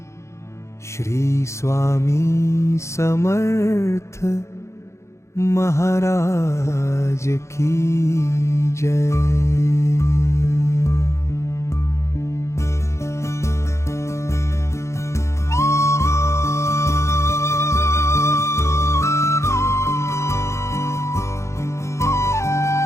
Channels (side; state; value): right; late; 0.14 ms